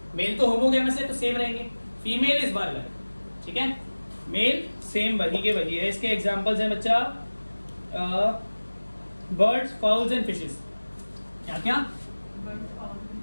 मेल तो होमोगैमस है तो सेम रहेंगे, फीमेल इस बार अलग, ठीक है। मेल सेम वही के वही है। इसके एग्जांपल्स हैं बच्चा, बर्ड्स, फाउल्स एंड फिशेस। क्या क्या,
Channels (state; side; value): inverted; both; correlation -1.00